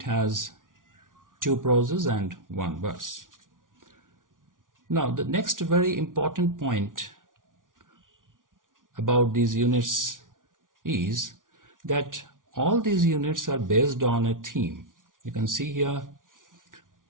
has 2 proses and 1 verse. Now the next very important point about these units is that all these units are based on a theme. You can see here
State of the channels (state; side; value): late; left; 0.88 ms